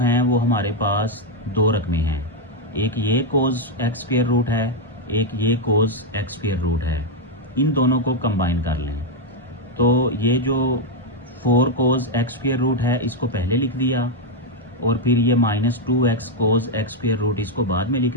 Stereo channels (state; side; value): normal; both; correlation 0.00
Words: वो हमारे पास 2 रकमें हैं, एक ये कोस एक्स स्क्वेयर रूट है, एक ये कोस एक्स स्क्वेयर रूट है। इन दोनों को कंबाइन कर लें तो ये जो 4 कोज एक्स स्क्वायर रूट है, इसको पहले लिख दिया, और फिर ये -2x cos x square root इसको बाद में लिख